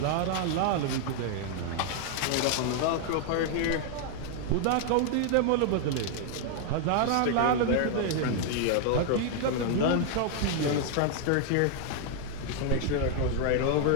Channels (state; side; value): different; both; correlation 0.00